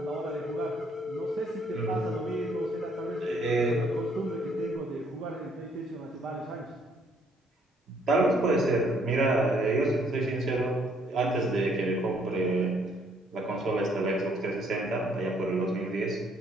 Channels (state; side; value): normal; both; correlation 0.66